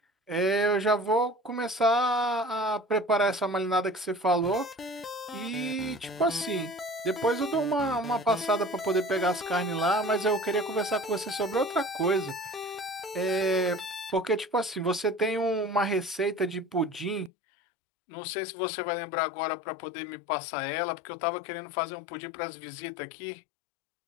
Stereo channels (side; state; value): right; drops out; at 17.3 s